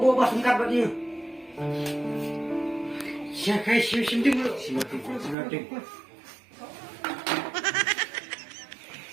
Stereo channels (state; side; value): drops out; left; at 5.4 s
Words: pas singkat buat dia. Siapa sim dulu. Simating.